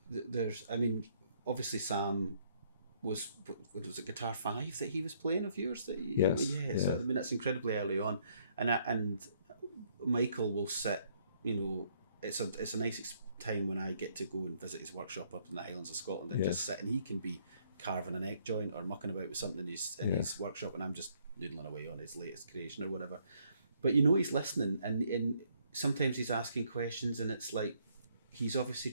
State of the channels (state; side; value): inverted; both; correlation -0.68